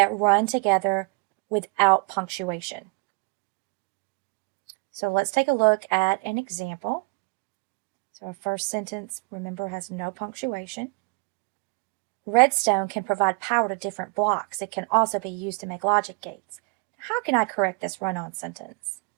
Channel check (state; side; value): quieter; left; 31.3 dB